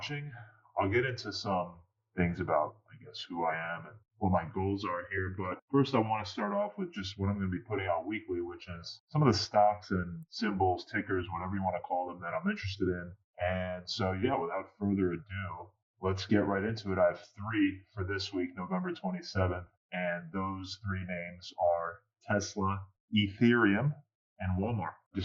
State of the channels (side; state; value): both; identical; correlation 1.00